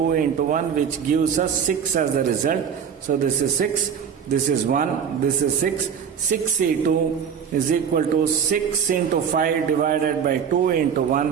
into 1, which gives us 6 as the result. So this is 6, this is 1, this is 6. 6C2 is equal to 6 into 5 divided by 2 into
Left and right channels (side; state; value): left; quieter; 7.4 dB